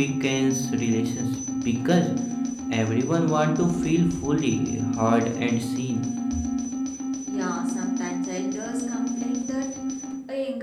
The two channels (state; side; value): identical; both; correlation 1.00